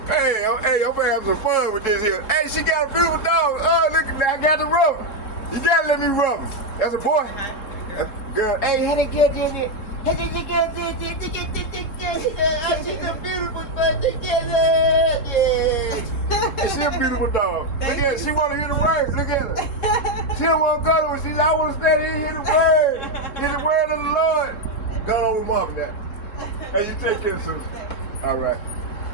Hey, I'm gonna have some fun with this here. Hey, she got a beautiful dog. Oh, look, I got to rub him. You gotta let me rub him. That's a boy. That's a girl. Hey, how they get in it? How they get she's a beautiful dog together. Yeah. She's a beautiful dog. Look at her. She wanna hear the words. Look at her. She don't wanna go to her. She's I wanna stand here and hear the word. Hear the word of the Lord. Go on with mom now. Hey, you take care, sister. All right.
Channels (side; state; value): right; late; 3.7 ms